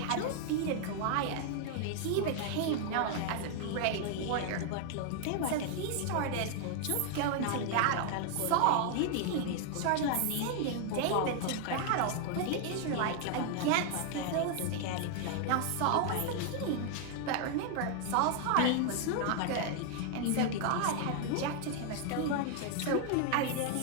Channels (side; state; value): both; different; correlation 0.00